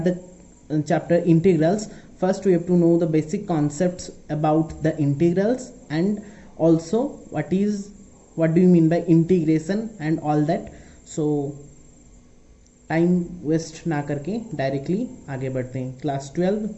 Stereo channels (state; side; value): identical; both; correlation 1.00